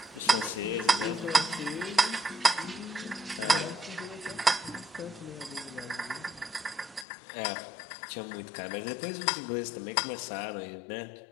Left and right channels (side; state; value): right; drops out; at 7.1 s